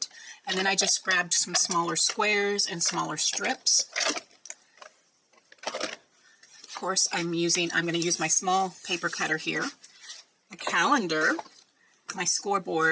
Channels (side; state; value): both; identical; correlation 1.00